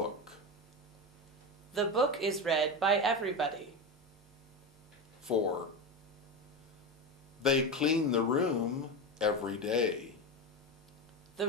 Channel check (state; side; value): normal; both; correlation 0.19